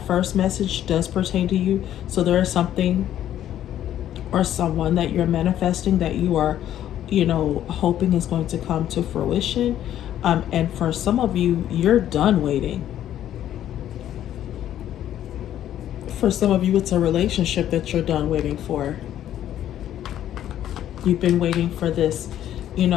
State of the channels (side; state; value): right; quieter; 11.5 dB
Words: first message does pertain to you. So there is something or someone that you're manifesting that you are, you know, hoping is going to come to fruition. And for some of you, you're done waiting. For some of you, it's a relationship that you're done waiting for. You've been waiting for this, you